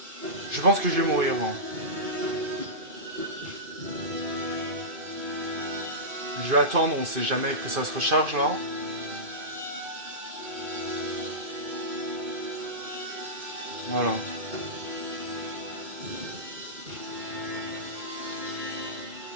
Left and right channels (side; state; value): left; late; 2.5 ms